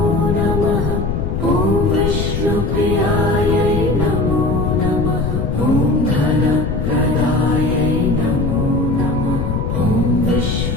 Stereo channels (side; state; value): left; noise; rumble, 1 dB below the sound